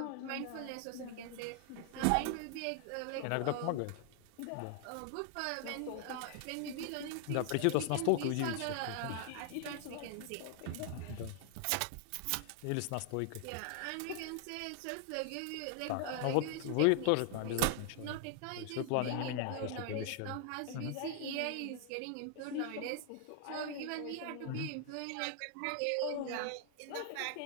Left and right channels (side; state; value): both; different; correlation 0.00